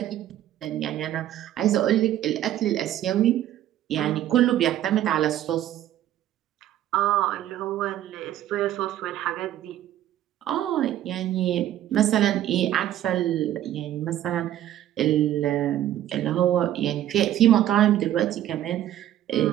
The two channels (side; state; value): left; quieter; 12.4 dB